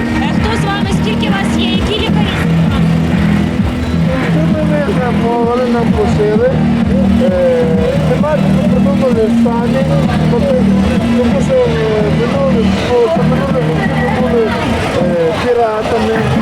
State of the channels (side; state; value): both; identical; correlation 1.00